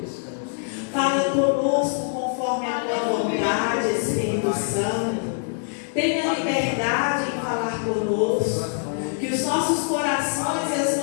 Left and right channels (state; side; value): silent; right; 63 dB below the other